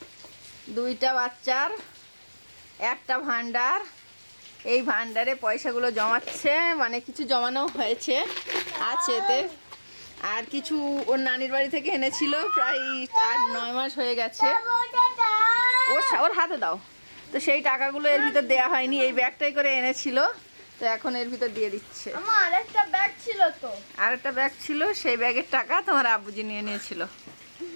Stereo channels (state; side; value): inverted; both; correlation -1.00